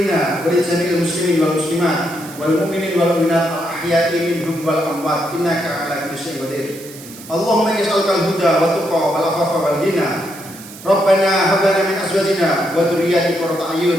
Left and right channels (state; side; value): noise; right; hiss, 17 dB below the sound